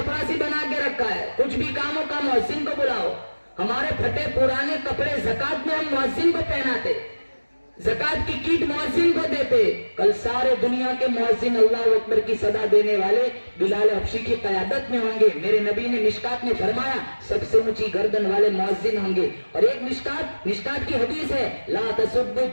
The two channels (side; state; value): both; inverted; correlation -1.00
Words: बना के रखा है। कुछ भी काम हो का मुअज्जिन को बुलाओ। हमारे फटे पुराने कपड़े ज़कात में हम मुअज्जिन को पहनाते, ज़कात की कीट मुअज्जिन को देते। कल सारे दुनिया के मुअज्जिन अल्लाह अकबर की सदा देने वाले बिलाल हबशी की क़यादत में होंगे। मेरे नबी ने मिशकात में फरमाया सबसे ऊंची गर्दन वाले मुअज्जिन होंगे। और एक मिशकात की हदीस है, ला तसुब्बु